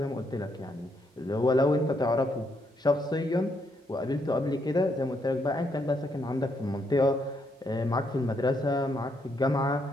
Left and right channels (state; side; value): normal; both; correlation 0.75